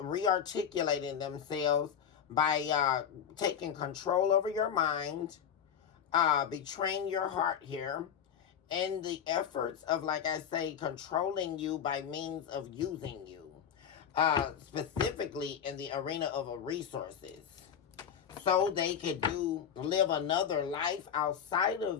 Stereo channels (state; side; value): quieter; right; 8.3 dB